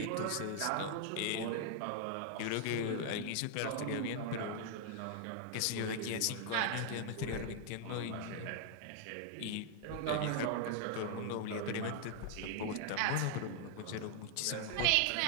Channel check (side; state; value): both; different; correlation 0.00